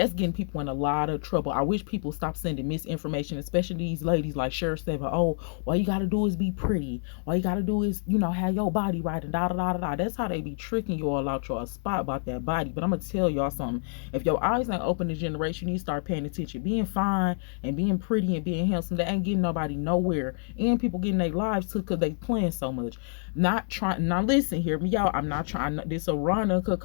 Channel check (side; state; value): right; silent; 58 dB below the other